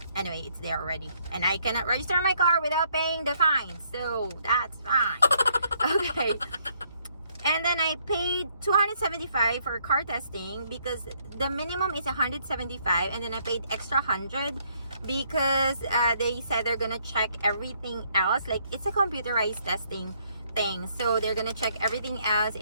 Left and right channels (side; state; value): both; inverted; correlation -0.69